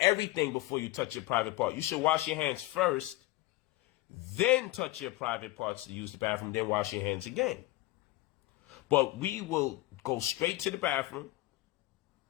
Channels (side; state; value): right; quieter; 18.6 dB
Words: everything before you touch your private part. You should wash your hands first, then touch your private parts to use the bathroom, then wash your hands again. But we will go straight to the bathroom,